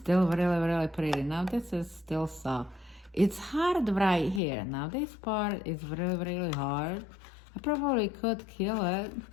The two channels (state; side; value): drops out; right; at 4.4 s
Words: really, really pretty. Now this is still soft. It's hard right here. Now this part is really, really hard. I probably could kill it